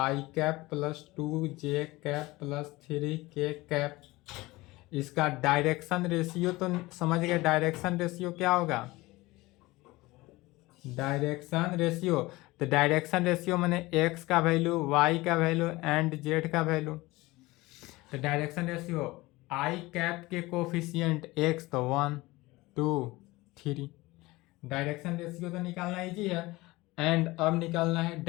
कैप प्लस 2 जे कैप प्लस 3 के कैप, इसका डायरेक्शन रेशियो तो समझ गए। डायरेक्शन रेशियो क्या होगा? डायरेक्शन रेशियो, तो डायरेक्शन रेशियो मैंने एक्स का वैल्यू, वाई का वैल्यू एंड जेड का वैल्यू। तो डायरेक्शन रेशियो आई कैप के कोफिशिएंट एक्स तो 1 2 3। डायरेक्शन रेशियो तो निकालना इजी है। एंड अब निकालना है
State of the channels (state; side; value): quieter; right; 20.6 dB